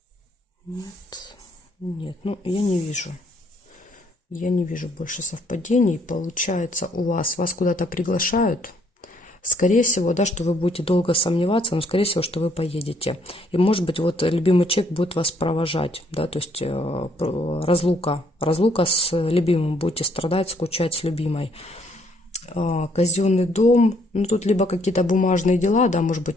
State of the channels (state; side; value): normal; both; correlation 0.67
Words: нет, нет. Ну, я не вижу. Я не вижу больше совпадений. Получается, вас куда-то приглашают. Скорее всего, да, что вы будете долго сомневаться, но скорее всего, что вы поедете. И может быть, вот любимый человек будет вас провожать, да, то есть разлука с любимым, будете страдать, скучать с любимой. Казенный дом, ну тут либо какие-то бумажные дела, да, может